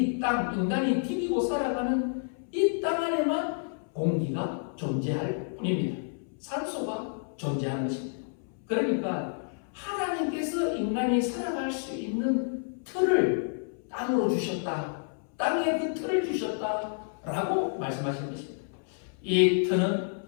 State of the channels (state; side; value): silent; right; 58 dB below the other